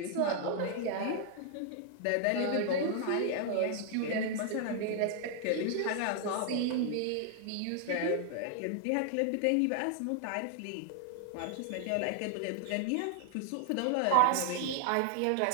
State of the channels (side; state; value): both; different; correlation 0.00